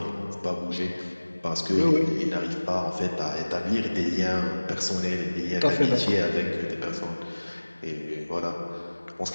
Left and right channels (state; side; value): inverted; both; correlation -1.00